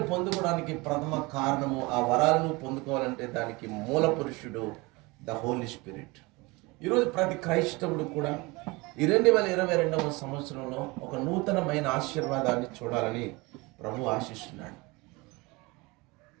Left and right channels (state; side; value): quieter; left; 24.4 dB